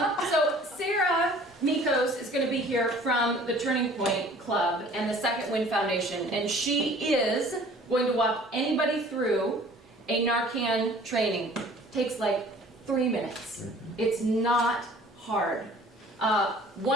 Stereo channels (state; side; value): normal; both; correlation 0.51